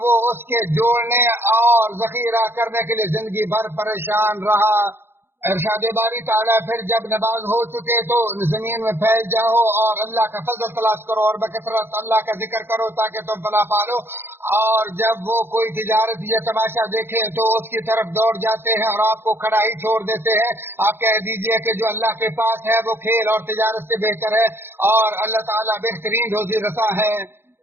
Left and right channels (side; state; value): left; late; 0.11 ms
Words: وہ اس کے جوڑنے اور ذخیرہ کرنے کے لیے زندگی بھر پریشان رہا۔ ارشاد باری تعالیٰ، پھر جب نماز ہو چکے تو زمین میں پھیل جاؤ اور اللہ کا فضل تلاش کرو اور بکثرت اللہ کا ذکر کرو تاکہ تم فلاح پالو، اور جب وہ کوئی تجارت یا تماشا دیکھیں تو اس کی طرف دوڑ جاتے ہیں اور آپ کو کھڑا ہی چھوڑ دیتے ہیں۔ آپ کہہ دیجئے کہ جو اللہ کے پاس ہے وہ کھیل اور تجارت سے بہتر ہے، اور اللہ تعالیٰ بہترین روزی رساں ہے۔